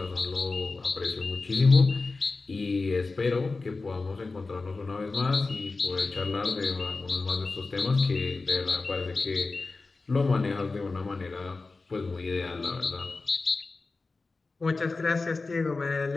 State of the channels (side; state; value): right; quieter; 3.8 dB